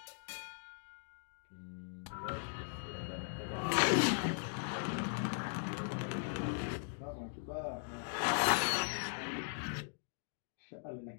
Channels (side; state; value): right; silent; digital silence